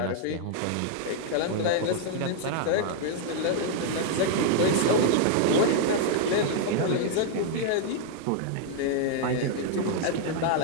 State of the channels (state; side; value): different; both; correlation 0.00